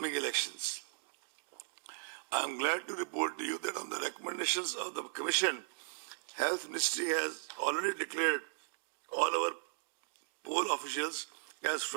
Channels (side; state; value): left; silent; digital silence